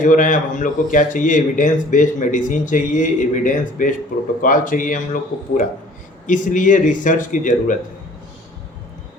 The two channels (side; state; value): both; normal; correlation 0.51